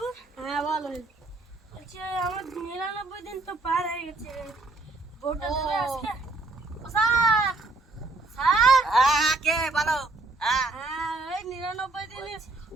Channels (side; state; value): left; quieter; 3.1 dB